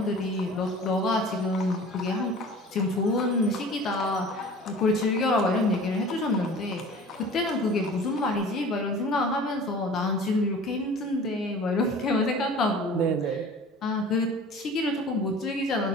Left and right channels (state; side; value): normal; both; correlation 0.43